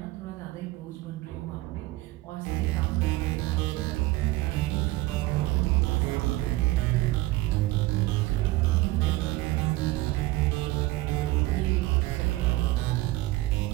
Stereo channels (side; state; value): left; quieter; 18.9 dB